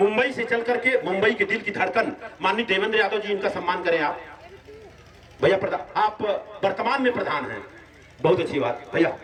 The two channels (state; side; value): identical; both; correlation 1.00